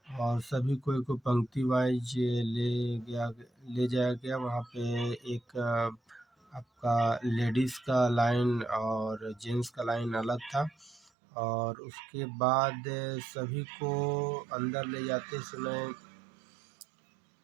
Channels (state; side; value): drops out; left; at 11.1 s